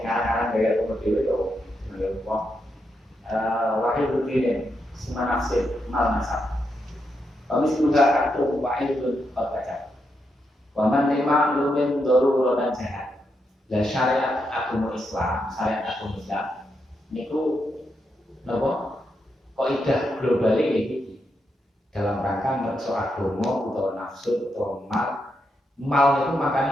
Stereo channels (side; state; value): both; normal; correlation 0.82